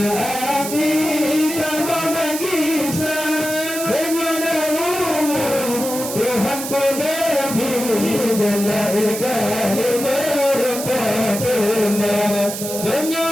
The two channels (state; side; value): noise; right; hiss, 7 dB below the sound